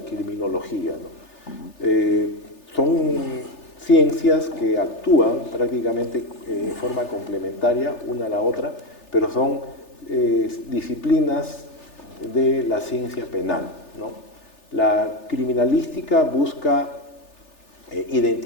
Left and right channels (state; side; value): late; right; 3.3 ms